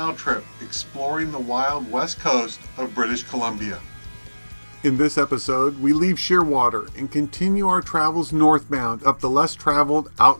trip exploring the wild west coast of British Columbia. In this episode, we leave Shearwater and continue our travels northbound up the less traveled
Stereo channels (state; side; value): inverted; both; correlation -1.00